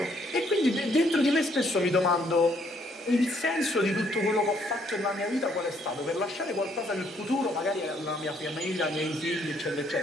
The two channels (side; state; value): both; normal; correlation 0.68